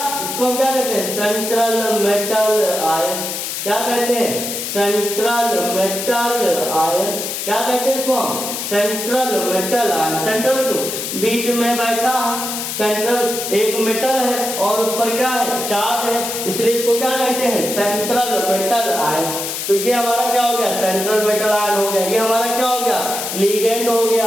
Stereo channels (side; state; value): left; noise; hiss, 4 dB below the sound